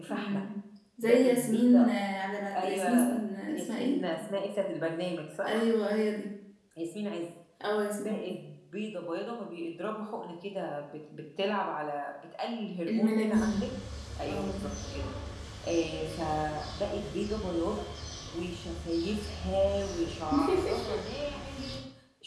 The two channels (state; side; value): identical; both; correlation 1.00